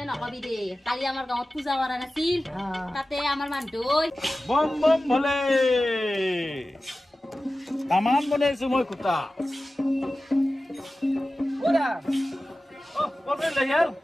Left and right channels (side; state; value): both; normal; correlation 0.95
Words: নকবি দে কালি আমাৰ গাঁৱত পূজা কৰা নাছিল তাতে আমাৰ মানুহ বম বম ভলে তামান বনাইছো মই কুটা ওৰা কবে লয়াল